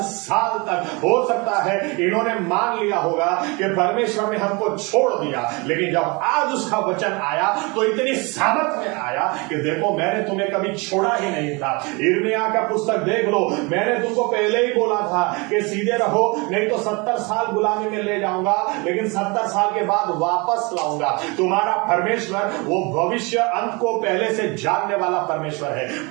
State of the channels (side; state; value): left; quieter; 28.3 dB